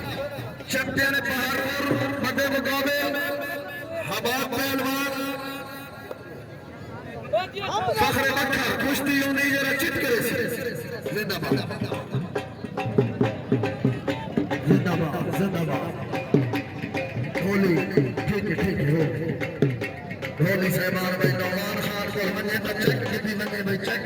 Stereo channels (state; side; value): identical; both; correlation 1.00